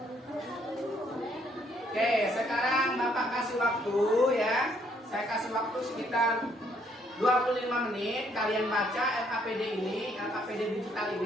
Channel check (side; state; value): both; normal; correlation 0.68